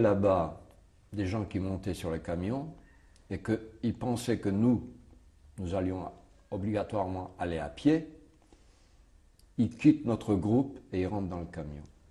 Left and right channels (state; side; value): identical; both; correlation 1.00